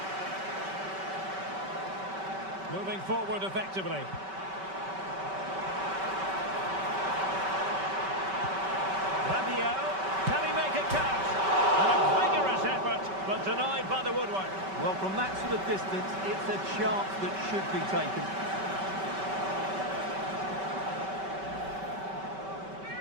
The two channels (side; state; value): left; late; 5.2 ms